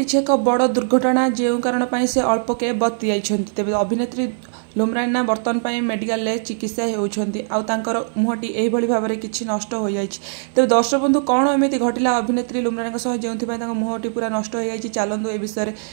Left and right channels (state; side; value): silent; left; 57 dB below the other